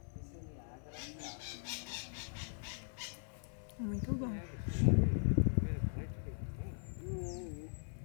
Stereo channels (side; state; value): right; silent; digital silence